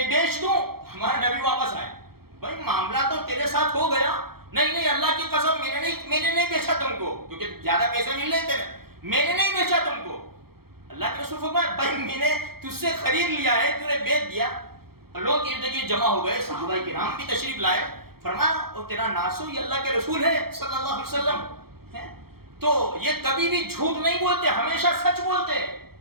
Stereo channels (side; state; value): left; late; 0.94 ms